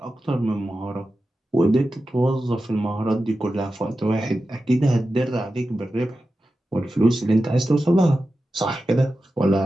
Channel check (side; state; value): both; normal; correlation 0.92